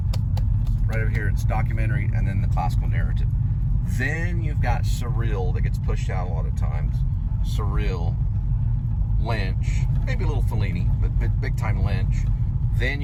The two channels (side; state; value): both; identical; correlation 1.00